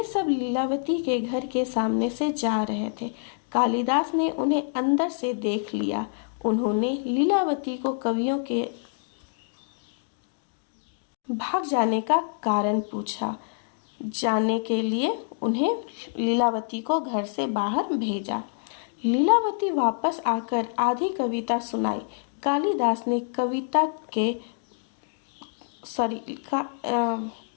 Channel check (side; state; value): right; silent; digital silence